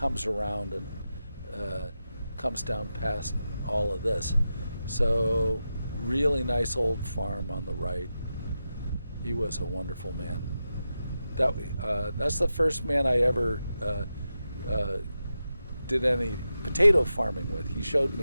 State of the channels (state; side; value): inverted; both; correlation -0.90